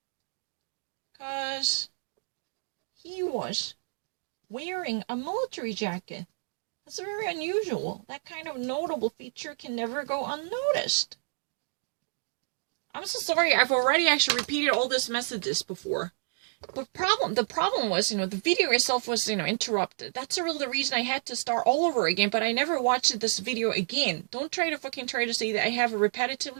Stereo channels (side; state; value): left; silent; digital silence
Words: Because he was wearing a military jacket. That's very unusual. That kind of notable feature can never go unnoticed. I'm so sorry, I've already actually repeated all these messages before. But the problem was, the video itself was, interrupted. That's really the reason I had to start all over again, but I never watched this video again. Don't try to say that I have